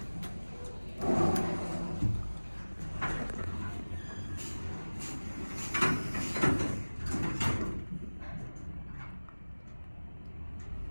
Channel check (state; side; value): inverted; both; correlation -1.00